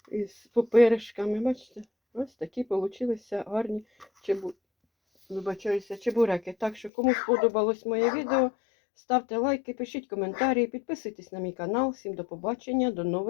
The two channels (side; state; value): right; drops out; at 6.9 s